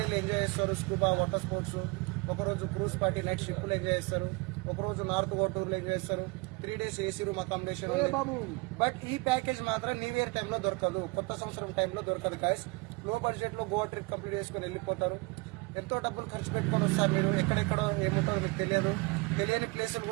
ఎంజాయ్ చేస్తారు. స్కూబా వాటర్ స్పోర్ట్స్, ఒకరోజు క్రూజ్ పార్టీ నైట్ షిప్లు ఎంజాయ్ చేస్తారు, ఒకరోజు నార్త్ గోటూరులో ఎంజాయ్ చేస్తారు. 3 days AC room accommodation. But ఈ ప్యాకేజ్ మాత్రం న్యూ ఇయర్ టైంలో దొరకదు, కొత్త సంవత్సరం టైంలో దొరకదు. గాయస్, లో బడ్జెట్ లో గోవా ట్రిప్ కంప్లీట్ చేసుకుని వెళ్ళిపోతారు. ఎంతో డబ్బులు ఖర్చు పెట్టుకొని వస్తారు. మీరు ఎక్కడెక్కడో ఏముంటారో మీకు తెలియదు, తెలియని ప్లేసులు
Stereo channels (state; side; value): quieter; left; 26.2 dB